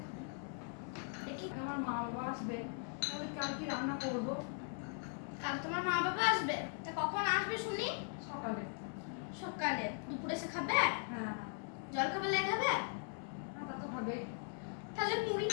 দেখি। আমার মা বাবা আসবে, তাহলে কাল কি রান্না করব? কাল তোমার মা বাবা আসবে? তা কখন আসবে শুনি? সকালে। সকালে? দুপুরে এসে খাবে? হ্যাঁ। জল খাবে লাই খাবে? হ্যাঁ, তা তো খাবে। তাহলে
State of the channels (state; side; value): silent; right; 51 dB below the other